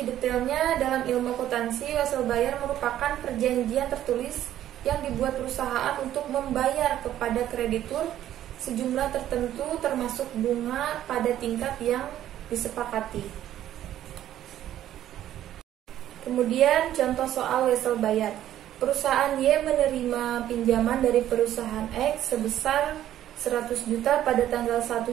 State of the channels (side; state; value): left; quieter; 12.1 dB